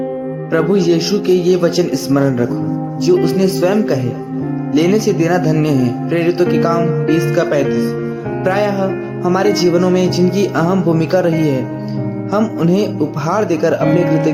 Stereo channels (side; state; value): both; identical; correlation 1.00